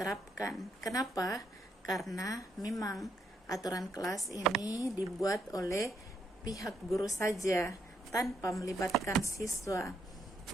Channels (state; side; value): normal; both; correlation 0.76